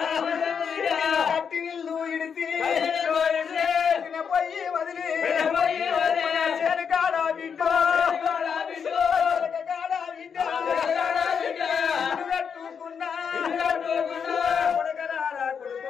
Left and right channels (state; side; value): quieter; right; 6.8 dB